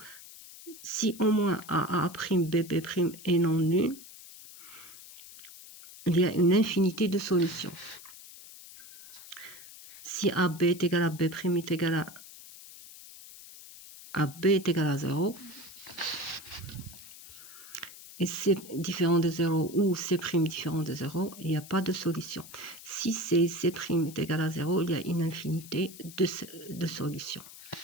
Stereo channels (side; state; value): left; noise; hiss, 17 dB below the sound